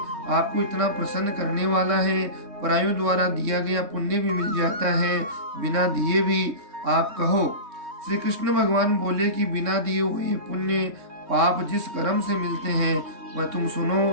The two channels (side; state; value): left; late; 3.6 ms